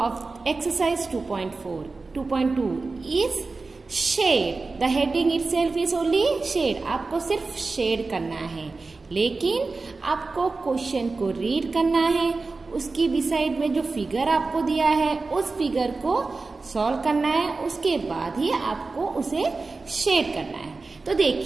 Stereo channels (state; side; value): quieter; left; 3.8 dB